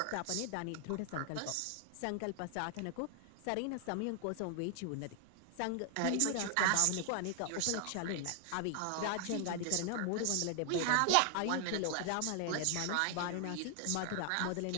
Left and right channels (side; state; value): both; different; correlation 0.00